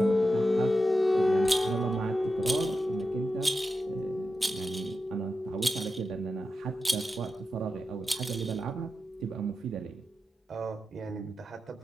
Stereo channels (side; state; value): both; normal; correlation 0.90